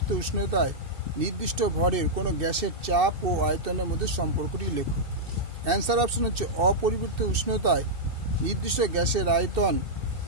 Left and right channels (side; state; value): left; late; 2.6 ms